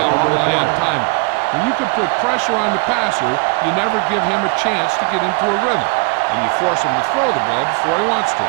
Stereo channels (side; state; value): left; quieter; 31.2 dB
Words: rely on timing. When you can put pressure on the passer, you never give him a chance to get into a rhythm. And you force him to throw the ball before he wants to.